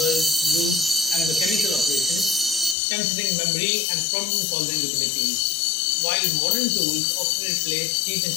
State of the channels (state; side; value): drops out; right; at 2.8 s